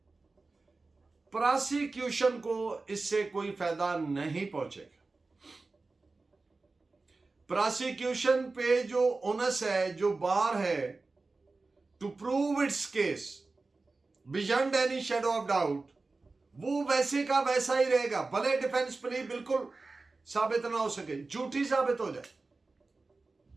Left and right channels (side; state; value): left; quieter; 3.6 dB